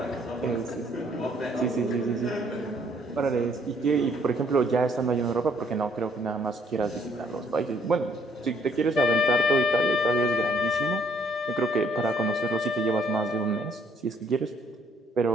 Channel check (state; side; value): normal; both; correlation 0.65